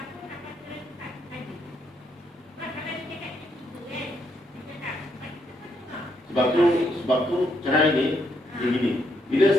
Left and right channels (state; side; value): normal; both; correlation 0.75